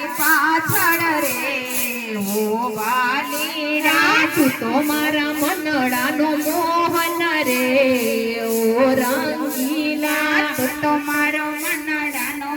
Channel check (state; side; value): identical; both; correlation 1.00